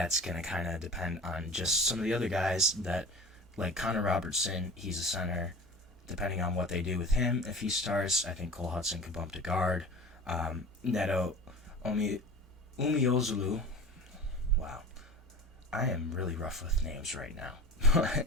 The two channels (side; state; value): both; normal; correlation 0.36